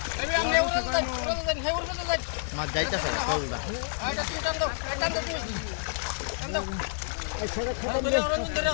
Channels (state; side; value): silent; right; 59 dB below the other